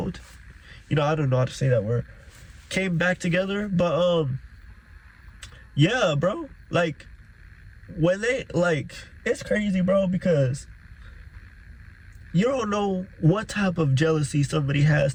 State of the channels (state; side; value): identical; both; correlation 1.00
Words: You know, I don't know how to say that word. Came back together, but yeah, bro. Like, when they, like, it's crazy, bro, because you don't know what type of jealousy somebody has